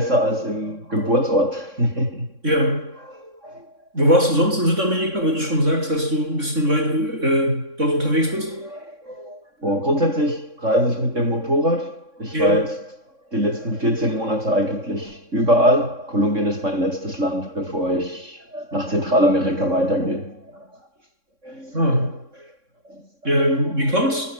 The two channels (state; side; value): late; left; 3.6 ms